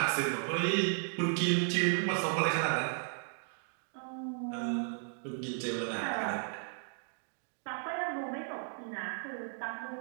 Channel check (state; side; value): silent; left; 55 dB below the other